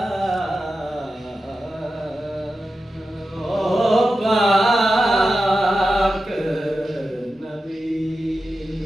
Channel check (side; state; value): both; normal; correlation 0.92